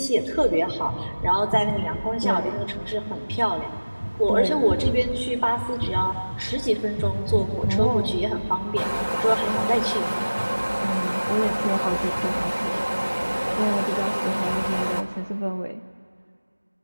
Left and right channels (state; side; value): inverted; both; correlation -1.00